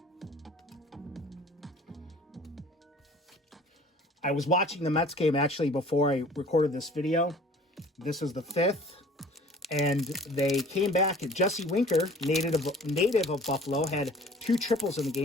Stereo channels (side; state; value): both; normal; correlation 0.49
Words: I was watching the Mets game actually before I recorded this video. This is the 5th, and they came back. Jesse Winker, native of Buffalo, had 2 triples in the